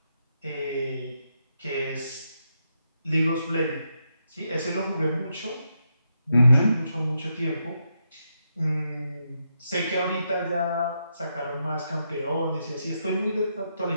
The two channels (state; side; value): inverted; both; correlation -0.82